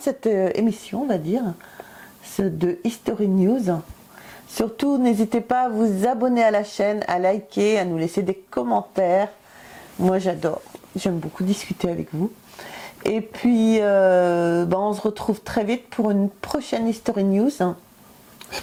cette émission, on va dire, de History News. Surtout, n'hésitez pas à vous abonner à la chaîne, à liker, à nous laisser des commentaires. Moi, j'adore. J'aime beaucoup discuter avec vous. Et puis, on se retrouve très vite pour une prochaine History News.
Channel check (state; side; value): identical; both; correlation 1.00